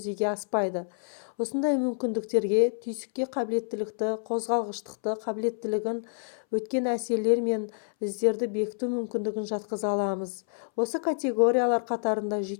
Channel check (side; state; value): right; silent; 59 dB below the other